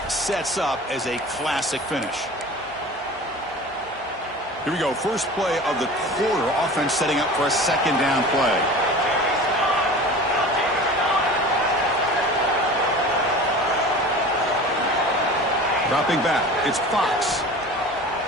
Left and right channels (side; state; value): both; normal; correlation 0.38